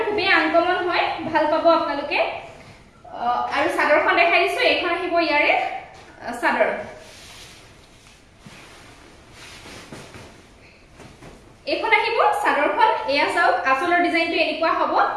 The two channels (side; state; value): both; identical; correlation 1.00